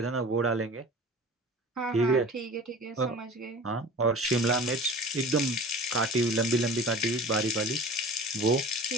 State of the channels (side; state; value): both; normal; correlation 0.40